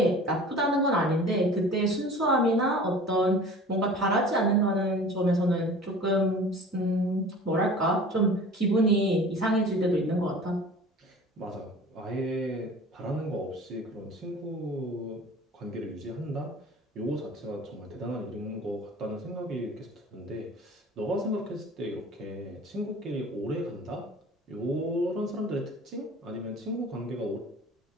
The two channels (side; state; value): both; normal; correlation 0.42